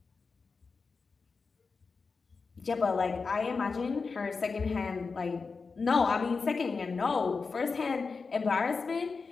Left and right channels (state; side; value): quieter; right; 4.6 dB